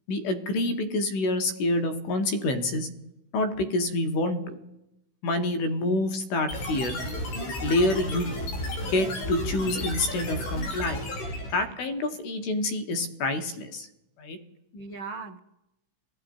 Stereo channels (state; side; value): late; right; 16 ms